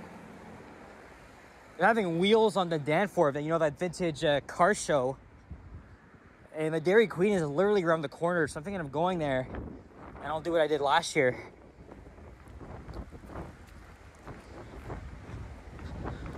having wheels on the Danforth, you know, that vintage car show. And the Dairy Queen is literally around the corner, so I'm thinking of going there. And I'll do what I did last year.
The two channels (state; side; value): identical; both; correlation 1.00